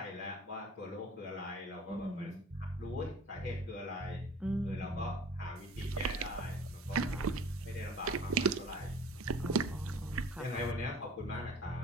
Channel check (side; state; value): both; normal; correlation 0.45